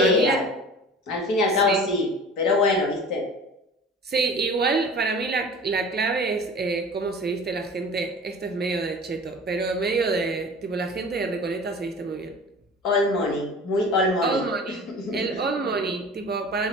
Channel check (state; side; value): normal; both; correlation 0.40